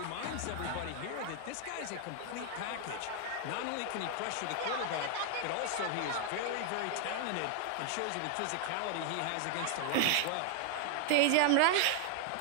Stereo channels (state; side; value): different; both; correlation 0.00